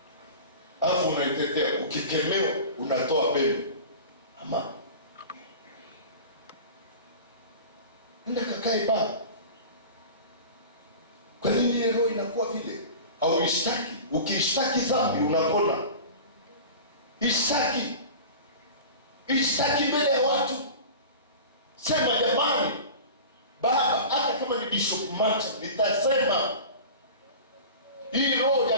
Alafu unaitetea, ukikemewa unatoa pembe. Ama nenda kakae baba. Kwa nini ile roho inakuwa vile? Au ishtaki. Ukishtaki dhambi unapona. Ishtaki. Ishtaki mbele ya watu. Sema jamani, baba, hata kama ni Bishop Macha, nitasema hii roho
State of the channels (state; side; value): inverted; both; correlation -0.35